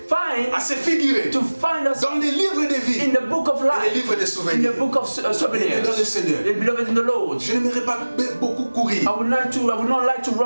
find à se figurer to find us dans les livres de vie in the book of et life, les livres de in souvenirs. the book of souvenirs. Dans le Seigneur. Beloved in the Lord, Je n'aimerais pas beaucoup courir. I would not like to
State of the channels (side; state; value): both; inverted; correlation -1.00